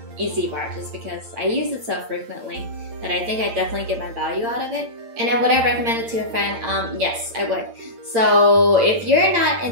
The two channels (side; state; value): left; late; 8.8 ms